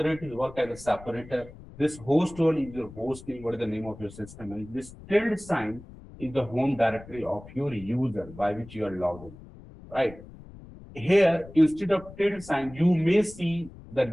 is work as a separator. This host one is your host name, what is the name of your system, and this tilde sign is the home directory of your user by which you are logged in, right? Here, instead of tilde sign, you may see the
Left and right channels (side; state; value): left; noise; rumble, 18 dB below the sound